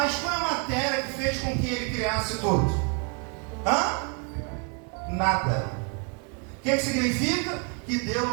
qual é a matéria que fez com que Ele criasse tudo? Nada. O que significa? Que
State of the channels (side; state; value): left; quieter; 36.3 dB